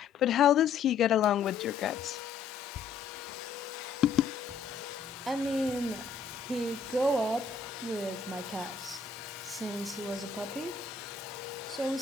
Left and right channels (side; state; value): right; quieter; 5.7 dB